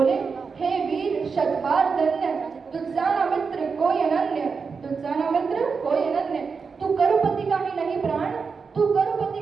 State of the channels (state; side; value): quieter; left; 5.2 dB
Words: हे वीर शतबार धन्य तुझसाना मित्र कोई अनन्य। तुझसाना मित्र कोई अनन्य। तू करुपति का ही नहीं प्राण तू